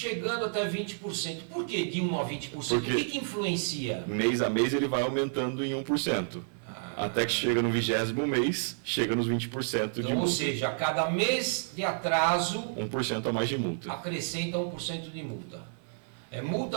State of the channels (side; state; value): left; silent; 58 dB below the other